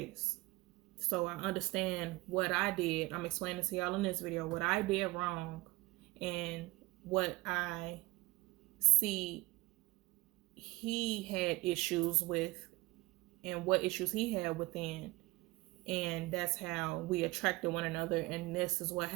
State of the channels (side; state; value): left; quieter; 22.0 dB